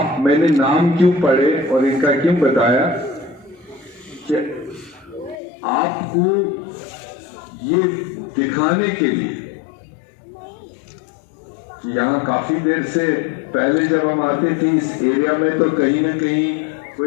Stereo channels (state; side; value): drops out; right; at 5.4 s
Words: मैंने नाम क्यों पढ़े और इनका क्यों बताया कि आपको ये दिखाने के लिए कि यहाँ काफी देर से पहले जब हम आते थे इस एरिया में तो कहीं ना कहीं